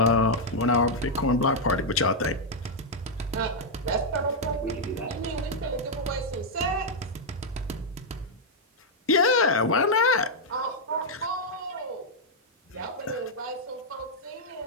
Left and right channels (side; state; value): both; normal; correlation -0.04